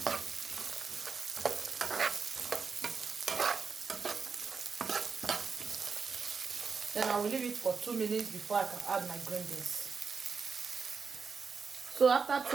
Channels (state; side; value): quieter; left; 5.3 dB